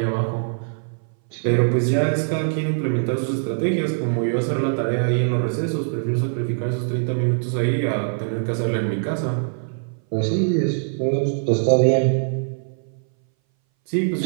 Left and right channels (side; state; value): left; silent; 60 dB below the other